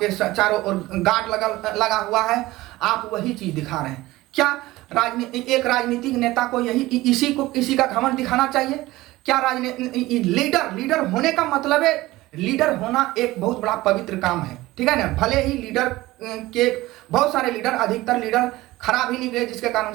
चारों ओर गार्ड लगा हुआ है, आप वही चीज दिखा रहे हैं। क्या एक राजनीतिक नेता को इसी का घमंड दिखाना चाहिए क्या? लीडर होने का मतलब है, लीडर होना एक बहुत बड़ा पवित्र काम है। ठीक है ना? भले ही लीडर के बहुत सारे लीडर, अधिकतर लीडर खराब ही निकले, जिसके कारण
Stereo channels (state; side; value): quieter; left; 18.3 dB